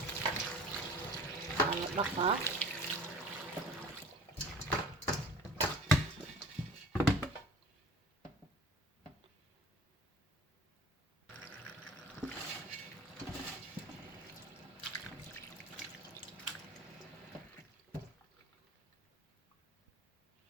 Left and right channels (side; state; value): both; normal; correlation 0.43